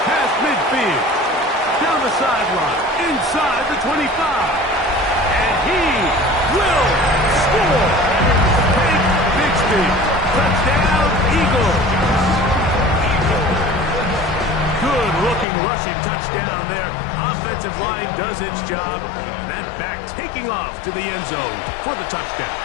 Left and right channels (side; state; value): right; drops out; at 15.5 s